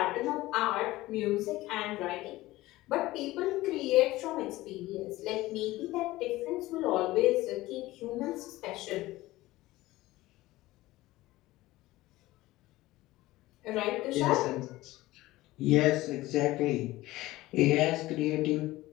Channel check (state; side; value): quieter; right; 17.8 dB